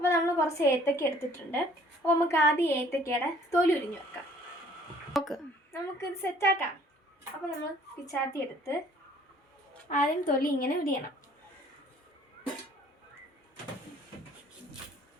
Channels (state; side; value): normal; both; correlation 0.57